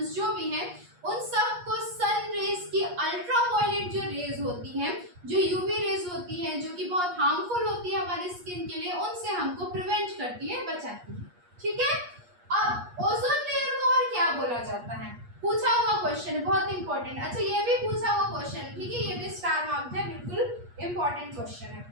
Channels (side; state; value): left; late; 8.4 ms